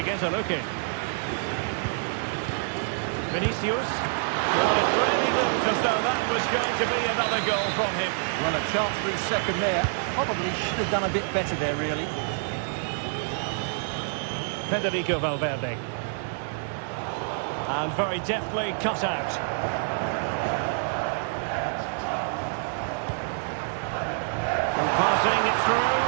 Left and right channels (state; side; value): silent; left; 60 dB below the other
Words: get a look in. Vinicius. Well, it really looked as though that was going to be another goal from him. Well, a chance for his second there. Probably should have done a bit better there, really. Federico Valverde. And very deftly cut out. And passing it through.